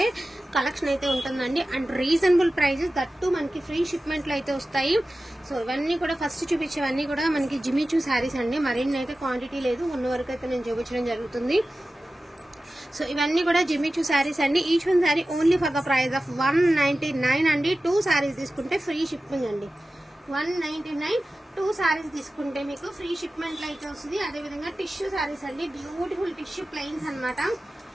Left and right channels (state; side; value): normal; both; correlation 0.95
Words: కలెక్షన్ అయితే ఉంటుందండి. అండ్ రీజనబుల్ ప్రైజెస్ దట్టు మనకి ఫ్రీ షిప్మెంట్ లో అయితే వస్తాయి. సో ఇవన్నీ కూడా ఫస్ట్ చూపించేవన్నీ కూడా మనకి జిమిచూ సారీస్ అండి. మరిన్ని అయితే క్వాంటిటీ లేదు, ఉన్న వరకు అయితే నేను చూపించడం జరుగుతుంది. సో ఇవన్నీ కూడా జిమిచూ సారీస్ అండి. Each one sorry only for the price of 199 అండి. 2 సారీస్ తీసుకుంటే ఫ్రీ షిప్పింగ్ అండి. 199 2 సారీస్ తీసుకుంటే మీకు ఫ్రీ షిప్మెంట్ అయితే వస్తుంది. అదేవిధంగా టిష్యూ సారీస్ అండి, బ్యూటిఫుల్ టిష్యూ ప్లెయిన్స్ అనమాట.